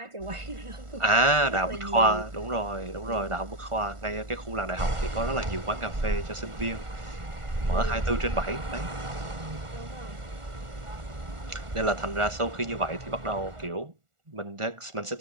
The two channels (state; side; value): late; left; 1.4 ms